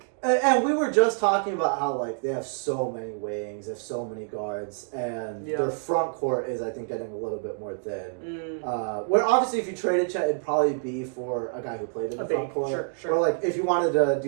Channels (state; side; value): silent; left; digital silence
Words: And we were just talking about how, like, they have so many wings, they have so many guards, and their front court is, I think, getting a little bit more thin. Where, obviously, if you traded Chet, it'd probably be for a guy who played in the front court. Sure. Or, like, if you wanted to